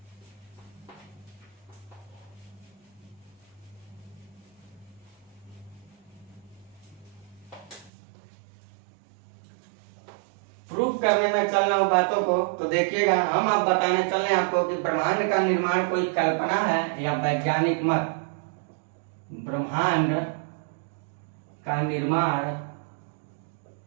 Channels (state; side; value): drops out; left; at 7.9 s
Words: प्रूफ करने में चल रहा हूं बातों को, तो देखिएगा हम अब बताने चल रहे हैं आपको कि ब्रह्मांड का निर्माण कोई कल्पना है या वैज्ञानिक मत। ब्रह्मांड का निर्माण